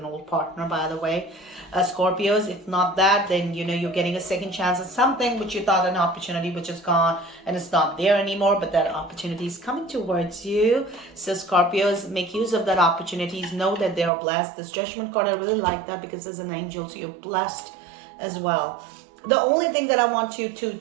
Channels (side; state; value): left; drops out; at 14.1 s